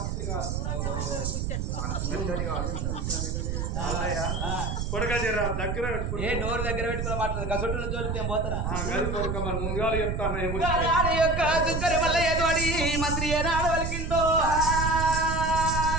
కాదు కొడక జర దగ్గర ఏ నోరు దగ్గర పెట్టుకుని మాట్లాడదు గసొట్టుల జోలికి నేను పోతానా మన ముందుగా చెప్తాను మంత్రి ఏనాడు వలికిందో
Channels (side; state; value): right; noise; rumble, 1 dB below the sound